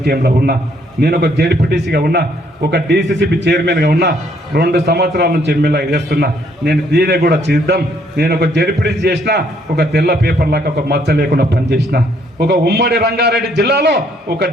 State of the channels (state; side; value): normal; both; correlation 0.68